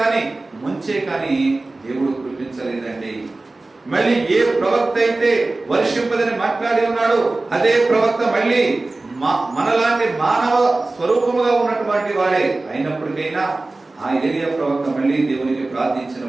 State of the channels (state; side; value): quieter; left; 3.1 dB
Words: ముంచే కాని దేవుడు కురిపించలేదండి. మళ్ళీ ఏ ప్రవక్త అయితే వర్షింపదని మాట్లాడి ఉన్నాడు, అదే ప్రవక్త మళ్ళీ మనలాంటి మానవ స్వరూపముగా ఉన్నటువంటి వాడే అయినప్పటికైనా ఆ ఏలియా ప్రవక్త మళ్ళీ దేవునికి